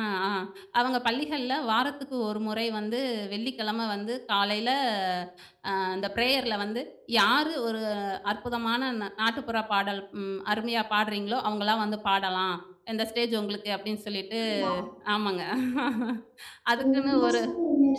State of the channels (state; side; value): identical; both; correlation 1.00